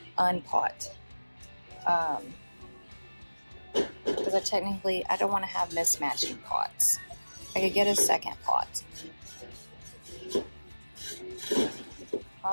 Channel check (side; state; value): both; inverted; correlation -1.00